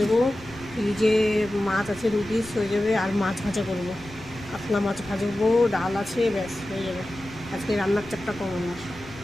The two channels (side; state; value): left; noise; rumble, 19 dB below the sound